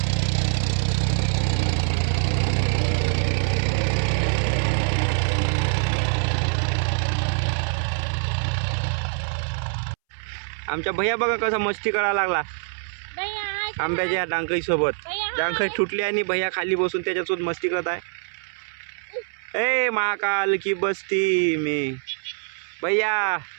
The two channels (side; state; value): left; silent; 62 dB below the other